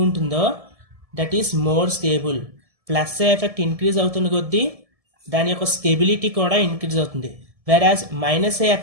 ఉంటుందో that is more stable. Plus effect increase అవుతున్న కొద్దీ దాని యొక్క స్టెబిలిటీ కూడా ఇంక్రీజ్ అవుతుంది. వెరాజ్ మైనస్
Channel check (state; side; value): late; left; 1.7 ms